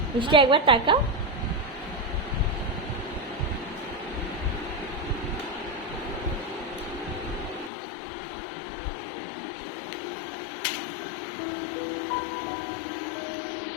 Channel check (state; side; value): drops out; right; at 7.7 s